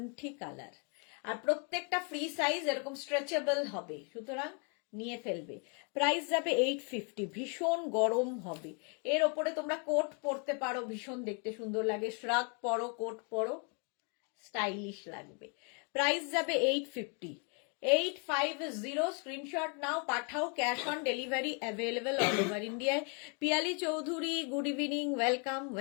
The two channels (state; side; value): quieter; right; 37.3 dB